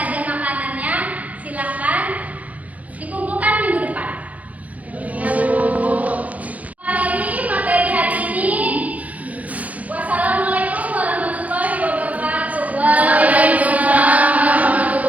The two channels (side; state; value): left; late; 0.070 ms